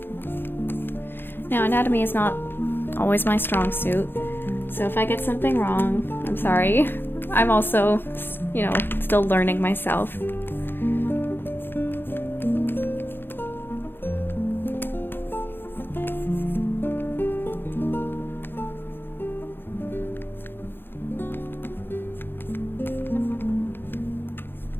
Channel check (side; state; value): right; late; 0.10 ms